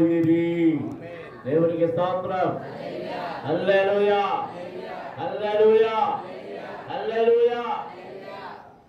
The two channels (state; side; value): identical; both; correlation 1.00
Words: దేవునికి స్తోత్రం. హల్లెలూయా, హల్లెలూయా, హల్లెలూయా.